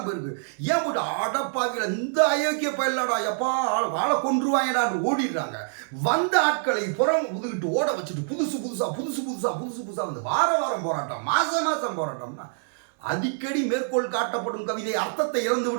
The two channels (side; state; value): left; silent; digital silence